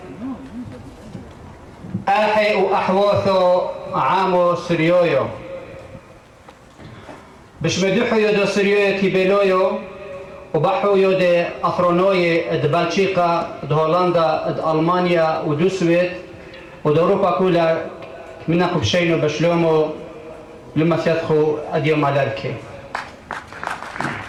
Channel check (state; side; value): identical; both; correlation 1.00